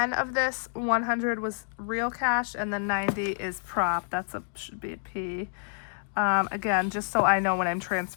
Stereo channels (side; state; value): right; silent; digital silence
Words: of this 100 was real cash, and then 90 is prop. Should be a P. Again, just so I know when I'm